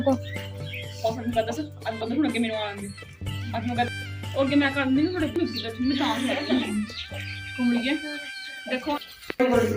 और मैं पता सर अब बंद होने के मेनू आएंगे अब मैं और के मैं कर दूंगी थोड़े कुछ की तो मैं काम है घूम लिए देखो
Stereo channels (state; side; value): identical; both; correlation 1.00